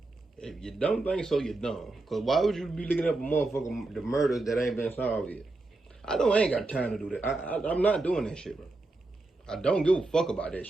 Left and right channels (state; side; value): quieter; left; 3.1 dB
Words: If you don't think so, you're dumb. Because why would you be looking up a motherfucker, the murders that ain't been solved yet? I ain't got time to do that. I'm not doing that shit, bro. I don't give a fuck about that